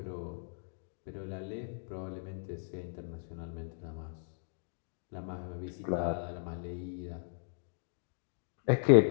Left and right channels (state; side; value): silent; right; digital silence